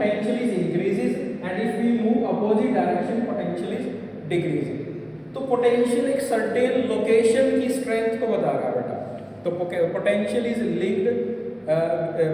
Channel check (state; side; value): identical; both; correlation 1.00